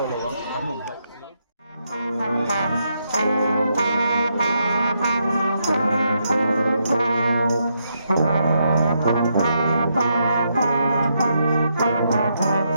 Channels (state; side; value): inverted; both; correlation -0.79